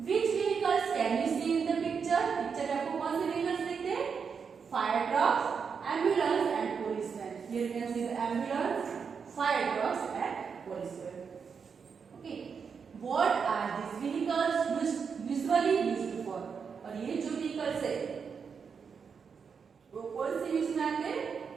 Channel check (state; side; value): quieter; left; 6.1 dB